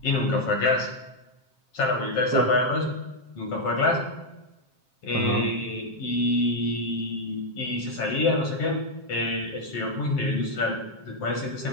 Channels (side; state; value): right; late; 7.5 ms